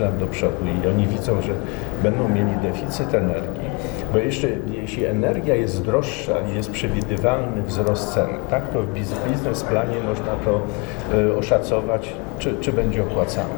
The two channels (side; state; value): right; quieter; 31.4 dB